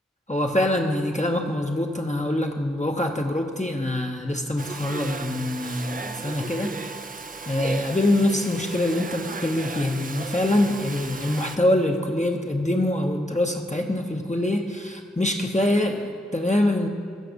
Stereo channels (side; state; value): both; normal; correlation 0.77